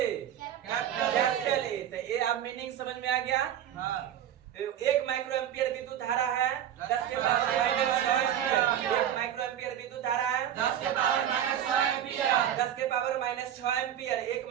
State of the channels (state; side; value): quieter; left; 10.4 dB